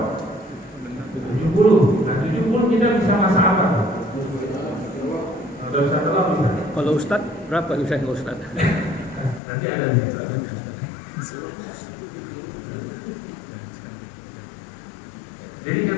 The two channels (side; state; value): right; drops out; at 9.4 s